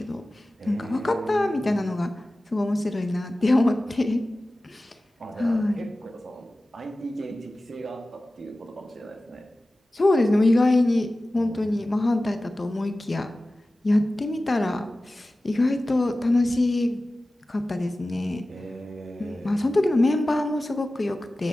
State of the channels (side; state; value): both; normal; correlation 0.96